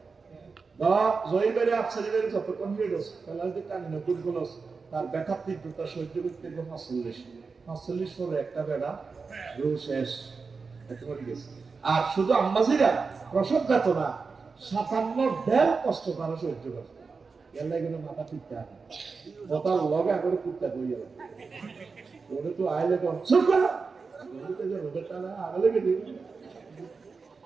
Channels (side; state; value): left; quieter; 4.7 dB